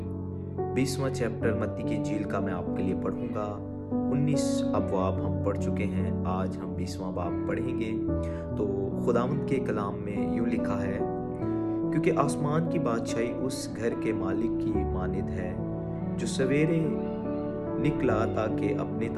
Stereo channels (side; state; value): both; identical; correlation 1.00